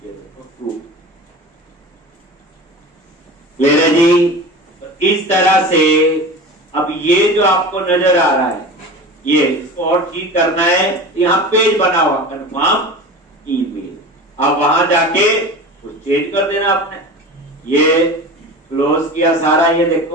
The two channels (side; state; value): both; normal; correlation 0.33